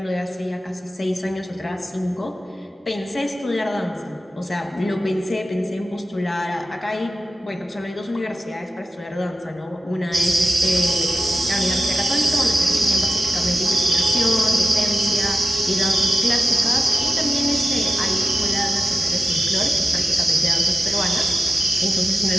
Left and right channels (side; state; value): both; normal; correlation 0.92